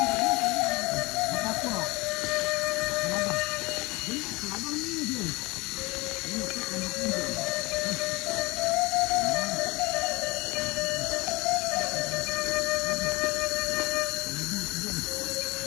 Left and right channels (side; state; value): right; quieter; 23.6 dB